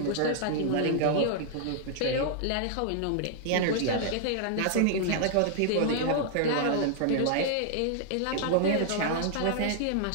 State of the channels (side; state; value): both; different; correlation -0.01